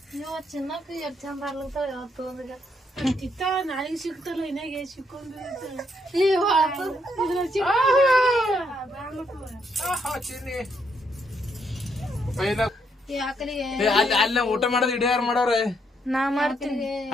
ನೀವು ಚಿನ್ನಕ್ಕೆ ಎಷ್ಟು ಚಂದ ಆಗ್ಲತ್ತಾವ ಯಾವತ್ತು ಒಂದಿಗ ಇತ್ತ ನಾಳೆಗೆ ಸಿಗ್ತಲ್ಲ ಇನ್ನಾಗೆ ಸಿಕ್ಕೊಂಡು ಅಲ್ಲ ಊಟ ಮಾಡೋದು ಇಡೀ ಯಾರು ಮಾಡವ್ರೆ ನಾ ಮಾಡ್ತೀನಿ.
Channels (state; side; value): normal; both; correlation 0.74